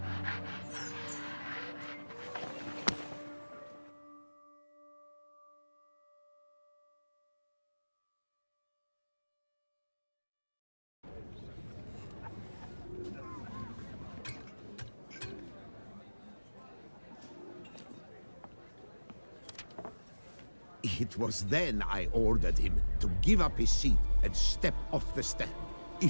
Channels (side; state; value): both; inverted; correlation -1.00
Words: It was then I ordered him to give up his seat and step off the stand.